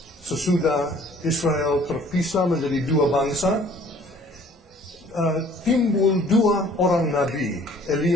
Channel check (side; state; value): both; normal; correlation 0.55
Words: sesudah Israel terpisah menjadi dua bangsa, timbul dua orang nabi,